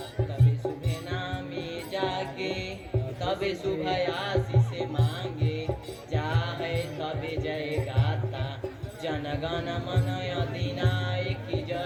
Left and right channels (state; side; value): identical; both; correlation 1.00